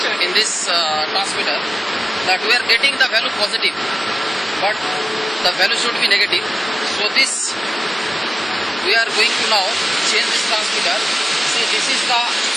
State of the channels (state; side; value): normal; both; correlation 0.97